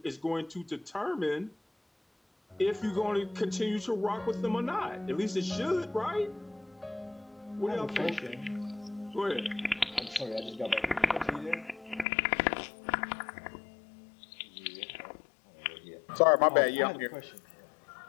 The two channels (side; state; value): right; drops out; at 12.1 s